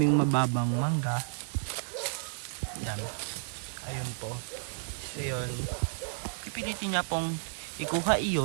mababang mangga. Yan. Ayun po. So yun. Pipilitin niya pong ikuha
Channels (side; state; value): left; silent; digital silence